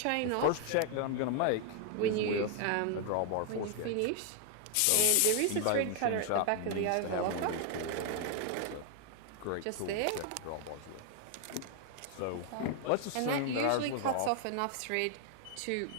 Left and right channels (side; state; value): both; different; correlation 0.00